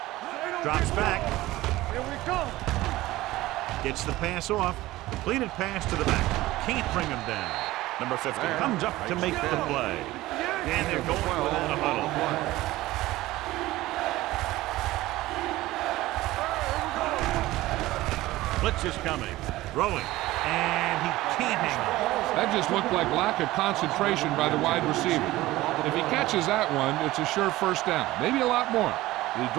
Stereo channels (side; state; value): left; quieter; 17.5 dB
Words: Drops back. Here we come. Gets the pass off. Completed pass to the back. Can't bring him down. Number 50 comes up to make the play. And they're going without a huddle. Blitz is coming. Throwing. And he can't hang on. That just looked like lack of concentration by the wide receiver. If he catches that one, it's a sure first down. Maybe a lot more. He